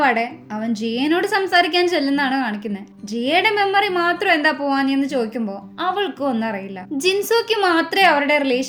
അവൻ ജിയനോട് സംസാരിക്കാൻ ചെല്ലുന്നാണ് കാണിക്കുന്നത്. ജിയയുടെ മെമ്മറി മാത്രം എന്താ പോവാഞ്ഞെന്ന് ചോദിക്കുമ്പോ അവൾക്കും ഒന്നും അറിയില്ല. ജിൻസോക്ക് മാത്രമേ അവരുടെ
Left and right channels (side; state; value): both; identical; correlation 1.00